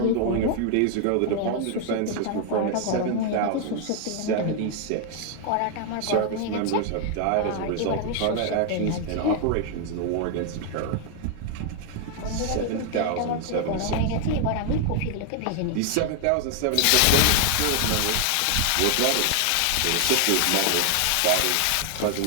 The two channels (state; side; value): different; both; correlation 0.00